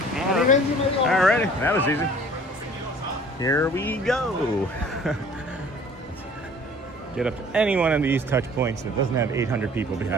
Alrighty, that was easy. Here we go. Get up to any one of these touch points that doesn't have 800 people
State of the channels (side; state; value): both; normal; correlation 0.51